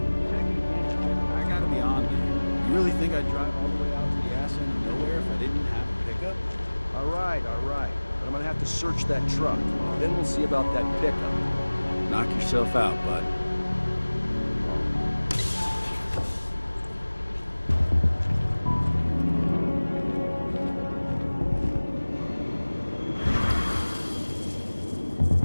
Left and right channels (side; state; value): both; inverted; correlation -1.00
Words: I gotta be on there. You really think I'd drive all the way out to the ass end of nowhere if I didn't have a pickup? All right. But I'm gonna have to search that truck. Then we'll see about that pickup. Knock yourself out, bud.